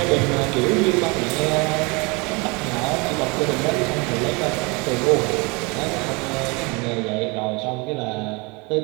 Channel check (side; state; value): left; quieter; 28.1 dB